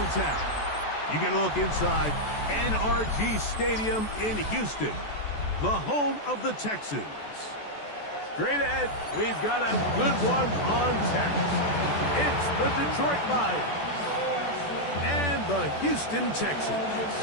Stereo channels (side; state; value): right; late; 14 ms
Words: You get a look inside NRG Stadium in Houston, the home of the Texans. Straight ahead, we've got a good one on tap. It's the Detroit Lions and the Houston Texans.